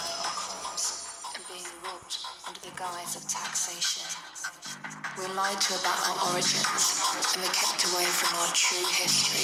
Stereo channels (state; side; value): identical; both; correlation 1.00